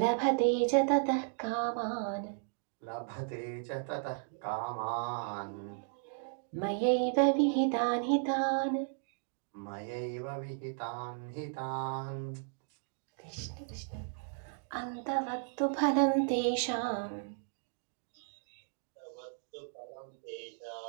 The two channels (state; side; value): silent; left; digital silence